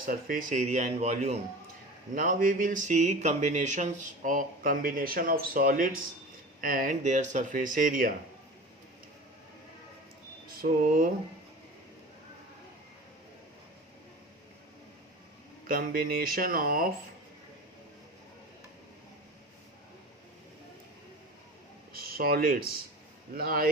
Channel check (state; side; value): normal; both; correlation 0.35